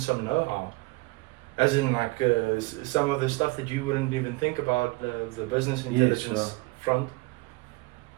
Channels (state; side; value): quieter; left; 23.9 dB